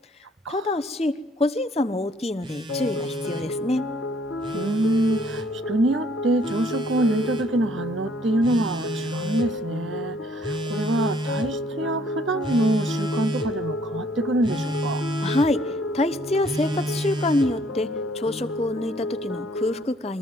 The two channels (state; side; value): normal; both; correlation 0.63